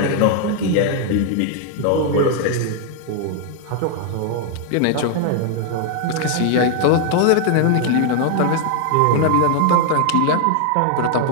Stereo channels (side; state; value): both; different; correlation 0.00